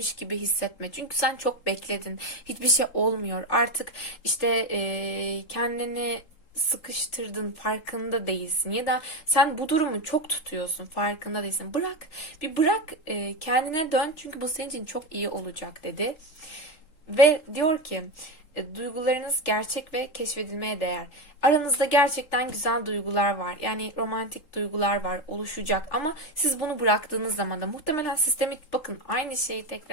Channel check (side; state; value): right; late; 3.8 ms